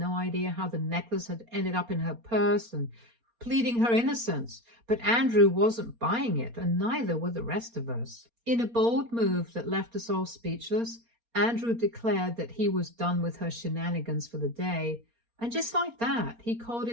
idea how the necklace had ended up in her purse and pleading her innocence. But Andrew wasn't buying it, and neither were the rest of us. In a bold move that left us all speechless, Andrew declared that he was done with her shenanigans for the day. And just like that, he called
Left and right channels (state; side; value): late; left; 4.3 ms